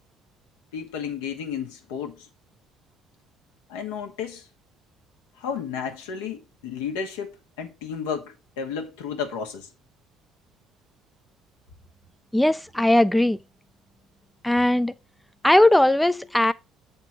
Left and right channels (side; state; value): both; normal; correlation 0.91